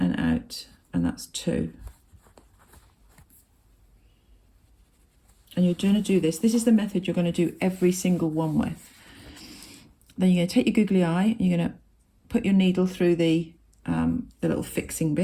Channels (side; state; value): both; identical; correlation 1.00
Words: out, and that's 2. And you're going to do this. This is the method you're going to do every single one with. Then you're going to take your googly eye, and you're going to put your needle through the little fixing